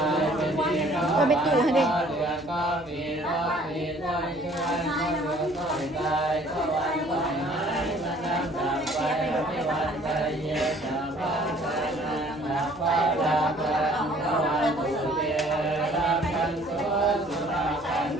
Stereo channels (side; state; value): right; noise; hum, 24 dB below the sound